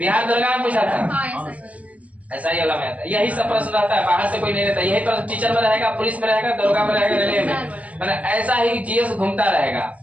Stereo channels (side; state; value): left; late; 0.068 ms